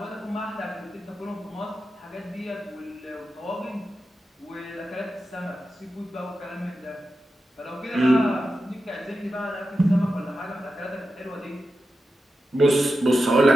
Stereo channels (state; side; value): normal; both; correlation 0.91